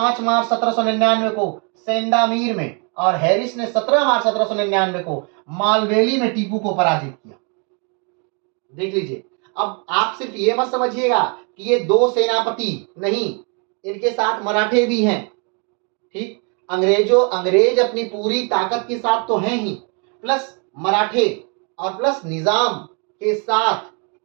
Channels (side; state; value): left; quieter; 36.5 dB